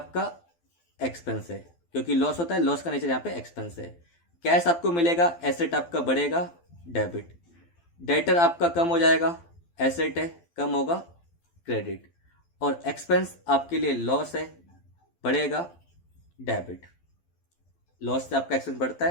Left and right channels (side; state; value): right; late; 12 ms